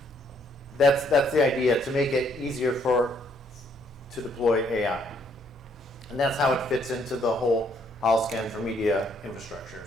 that's the idea, to make it easier to deploy AI. And that's how it fits into the whole Holoscan for media infrastructure.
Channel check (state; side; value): normal; both; correlation 0.69